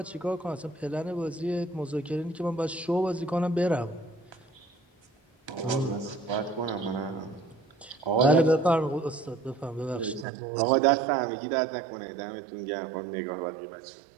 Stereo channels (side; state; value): left; drops out; at 10.2 s